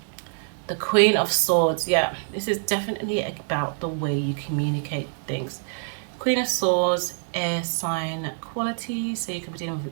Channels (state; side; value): silent; left; digital silence